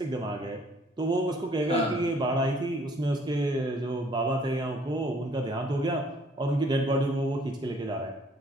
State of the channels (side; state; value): both; normal; correlation 0.60